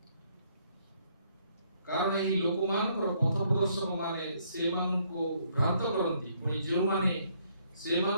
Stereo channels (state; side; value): inverted; both; correlation -0.69